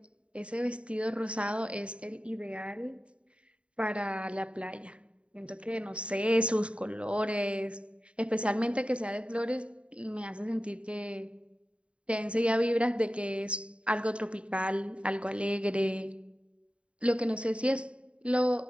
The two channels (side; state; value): left; late; 0.060 ms